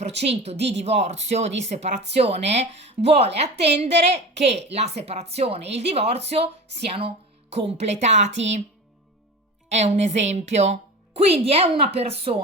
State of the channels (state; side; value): normal; both; correlation 0.32